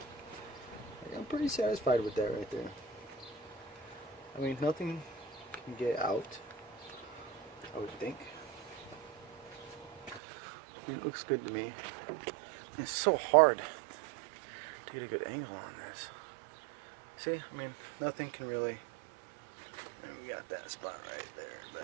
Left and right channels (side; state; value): left; drops out; at 10.2 s